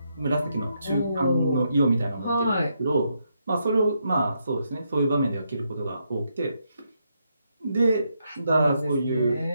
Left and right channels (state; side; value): inverted; both; correlation -0.80